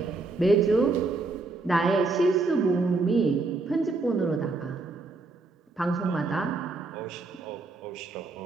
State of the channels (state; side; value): quieter; left; 3.6 dB